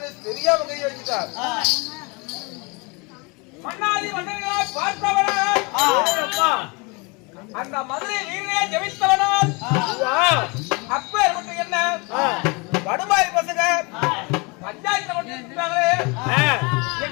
தெரியாம கை வச்சுட்டார். மன்னாதி மன்னர்களை பார்த்தவனால் அந்த மதுரை வீரே ஜெயித்தவனால் அப்பேற்பட்ட என்ன வடுமாறி பசங்க பஞ்சாயத்துல கொண்டு இருக்காங்களே,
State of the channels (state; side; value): quieter; right; 29.0 dB